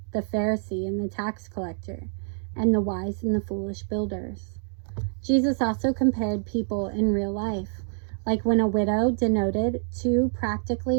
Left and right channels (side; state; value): left; silent; digital silence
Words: the Pharisee and the tax collector, and the wise and the foolish builders. Jesus also compared people in real life, like when a widow donated 2